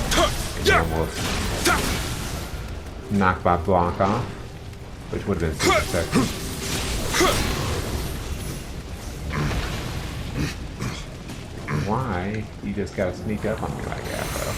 Almost knocked my block off, which would have been super sexy. you just gotta sneak up on me like that, though.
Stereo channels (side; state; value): both; identical; correlation 1.00